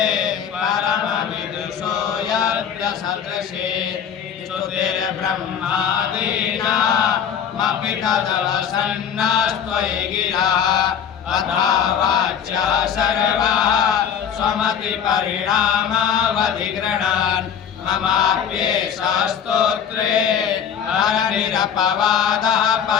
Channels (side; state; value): right; quieter; 8.2 dB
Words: परमविदुषो यज्ञसदृशे स्तुतिर्ब्रह्मादीनामपि तदवसन्नास्त्वयि गिरः अथा वाच्या सर्वः स्वमतिपरिणामावधिगृह्णान् ममाप्येषा स्तोत्रे हरनिरपवादः